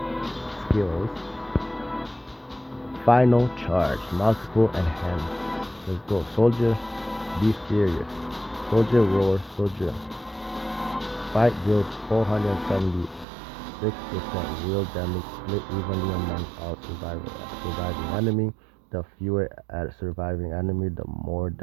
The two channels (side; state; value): left; drops out; at 13.2 s